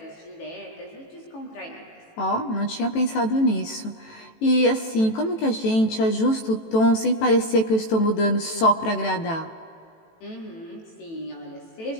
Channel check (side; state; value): right; late; 18 ms